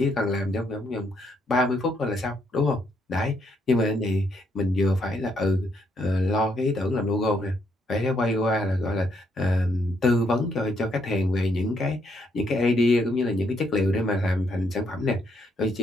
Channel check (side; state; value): both; normal; correlation 0.74